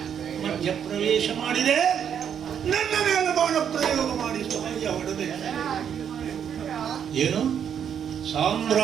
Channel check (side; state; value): left; quieter; 8.4 dB